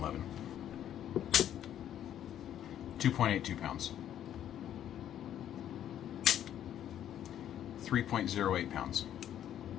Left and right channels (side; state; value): right; quieter; 10.7 dB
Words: 2.82 pounds. 3.08 pounds.